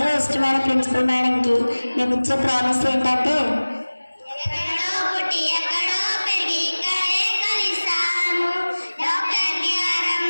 ఇష్టమైన ప్రిన్సిపల్ మేడంకి మేము ఇచ్చే ప్రామిస్ ఏంటంటే,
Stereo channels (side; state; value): both; inverted; correlation -1.00